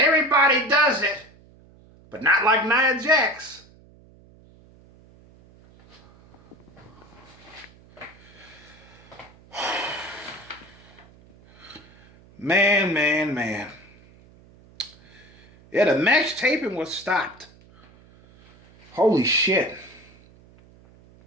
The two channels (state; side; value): noise; right; hum, 26 dB below the sound